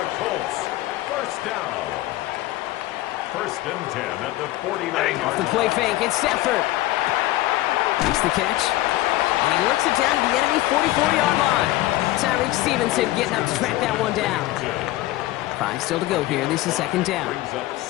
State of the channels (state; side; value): quieter; right; 16.8 dB